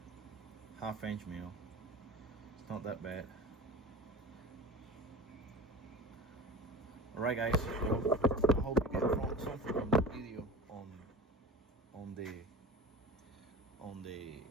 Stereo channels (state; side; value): normal; both; correlation 0.36